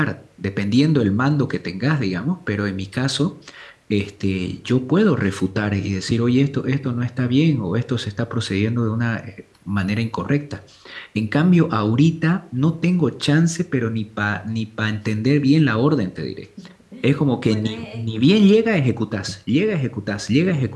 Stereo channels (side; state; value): both; identical; correlation 1.00